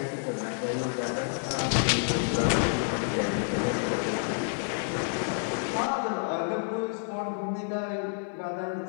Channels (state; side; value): silent; right; digital silence